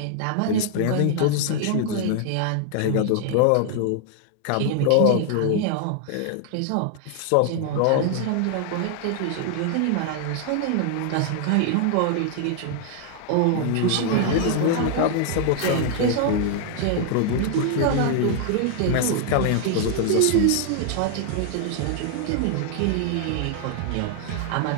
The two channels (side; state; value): both; different; correlation 0.00